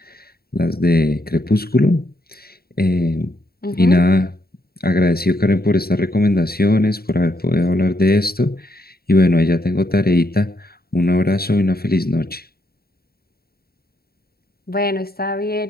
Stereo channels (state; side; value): late; right; 0.45 ms